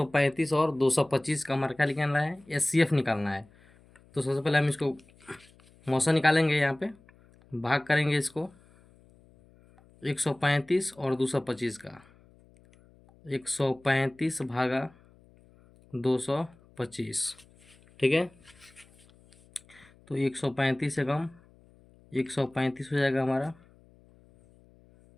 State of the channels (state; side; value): noise; left; hum, 28 dB below the sound